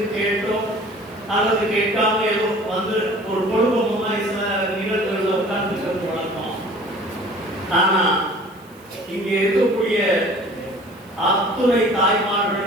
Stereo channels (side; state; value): right; noise; hiss, 28 dB below the sound